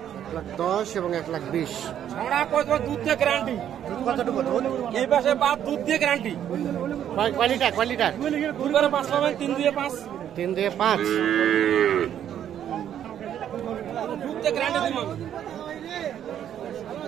1,10 এবং 1,20,000। দুধ দিয়ে গ্যারান্টি। কতটুকু দুধ? এই পাশে বাদ দুধ দিয়ে গ্যারান্টি। কয় লিটার? 5 পাবেন, 3 দিয়ে 5। 3 দিয়ে 5। দুধ দিয়ে গ্যারান্টি দিব।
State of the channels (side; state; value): left; quieter; 10.1 dB